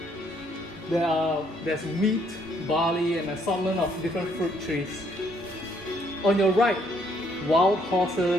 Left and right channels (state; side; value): normal; both; correlation 0.68